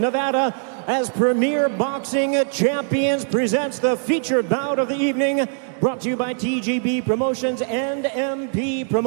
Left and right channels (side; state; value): left; silent; 55 dB below the other